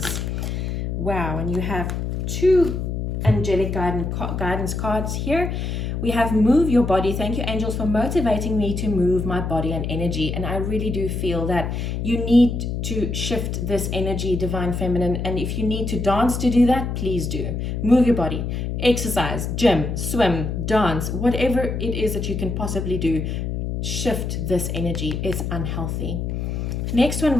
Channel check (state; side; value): noise; left; hum, 2 dB below the sound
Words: Wow, and you have two angelic guidance cards here. We have move your body. Thank you, angels, for motivating me to move my body and energy. And I really do feel that you need to shift this energy, divine feminine. And if you need to dance to do that, please do. Move your body, exercise, gym, swim, dance, whatever it is that you can possibly do. Shift this energy. It's unhealthy. Next one